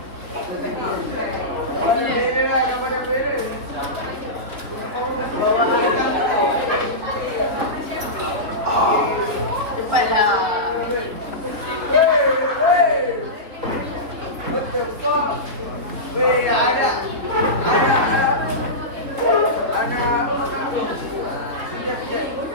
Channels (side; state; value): left; late; 3.6 ms